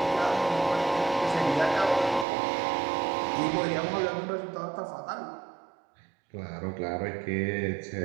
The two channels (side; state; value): left; drops out; at 2.2 s